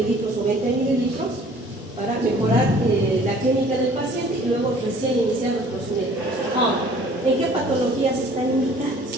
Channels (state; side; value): normal; both; correlation 0.53